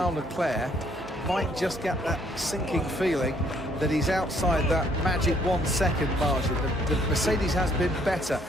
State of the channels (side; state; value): both; normal; correlation 0.65